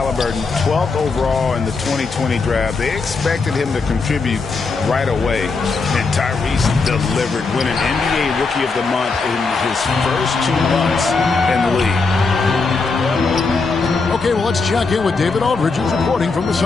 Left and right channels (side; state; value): right; quieter; 4.3 dB